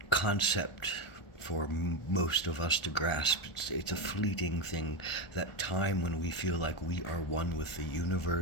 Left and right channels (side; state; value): right; late; 1.4 ms